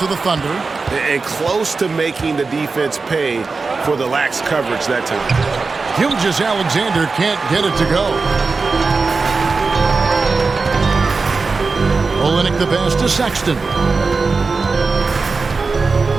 the Thunder. And close to making the defense pay for the lax coverage that time. Gilgeous-Alexander can't get it to go. Olynyk the pass to Sexton.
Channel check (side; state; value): left; quieter; 4.3 dB